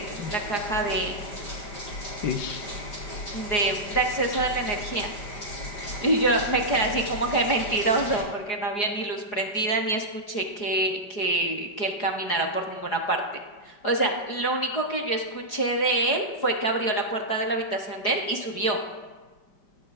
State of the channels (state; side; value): late; right; 4.8 ms